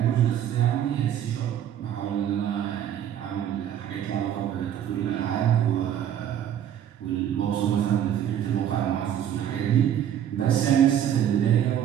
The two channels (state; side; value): quieter; left; 10.2 dB